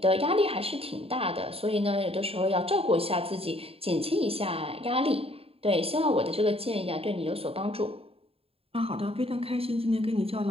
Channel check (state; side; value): late; left; 0.28 ms